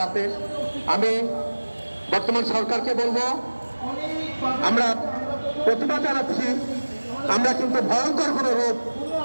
আমি বর্তমান সরকারকে বলবো, আমরা প্রতিবাদ জানাচ্ছি, আমরা কিন্তু ভয়ঙ্কর কোনো রূপ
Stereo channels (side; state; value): both; inverted; correlation -1.00